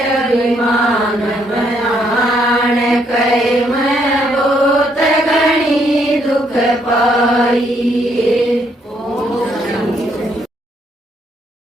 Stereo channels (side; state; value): both; normal; correlation 0.72